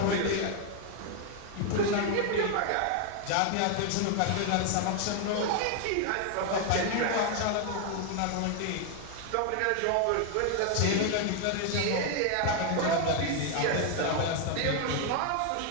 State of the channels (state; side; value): different; both; correlation 0.00